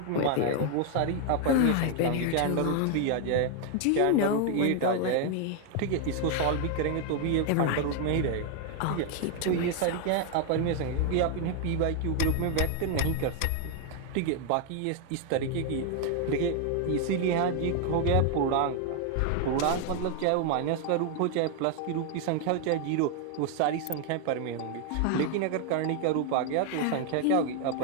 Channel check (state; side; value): different; both; correlation 0.00